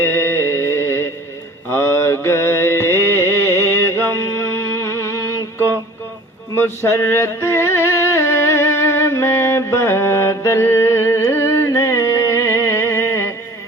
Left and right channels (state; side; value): normal; both; correlation 0.46